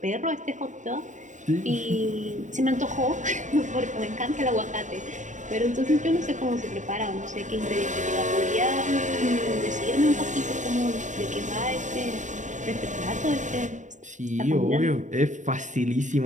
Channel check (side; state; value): left; late; 0.36 ms